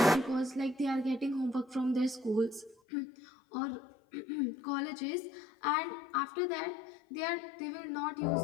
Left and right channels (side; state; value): right; drops out; at 2.8 s